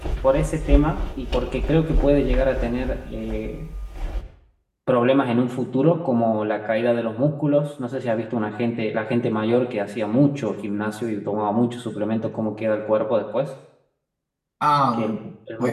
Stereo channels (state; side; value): identical; both; correlation 1.00